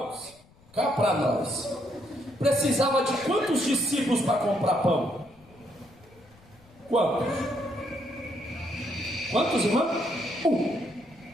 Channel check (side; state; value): left; noise; rumble, 27 dB below the sound